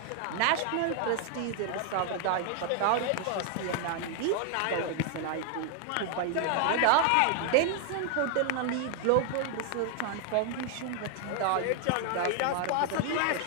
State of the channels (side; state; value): both; different; correlation 0.00